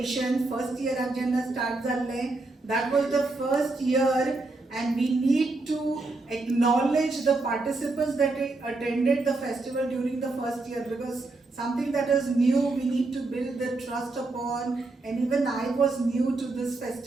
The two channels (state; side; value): quieter; left; 3.3 dB